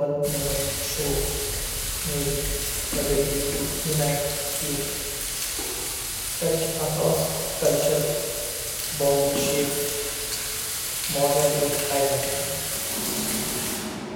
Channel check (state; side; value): identical; both; correlation 1.00